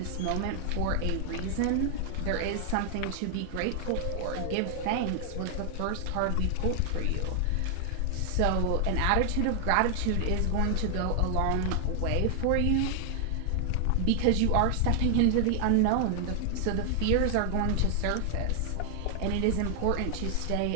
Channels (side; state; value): both; different; correlation 0.00